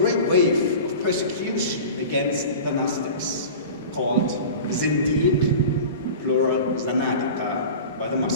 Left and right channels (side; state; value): both; inverted; correlation -0.35